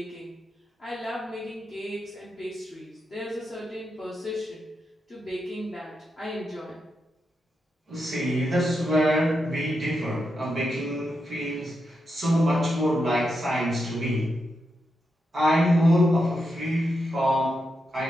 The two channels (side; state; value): both; normal; correlation 0.85